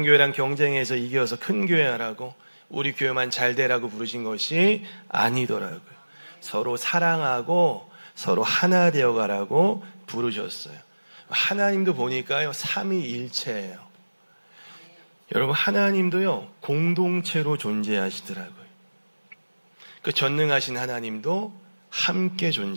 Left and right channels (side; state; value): both; inverted; correlation -1.00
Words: 교회랑 경쟁해서 이겨서 큰 교회 하라고, 우리 교회만 잘 되라고 부르신 것이 아니더라고요. 서로 사랑하고 서로 하나 되어가라고 부르셨어요. 하나님도 보니까요, 삼위일체예요. 여러분, 하나님도요 공동체로 존재하시더라고요. 그 전능하신 하나님도 함께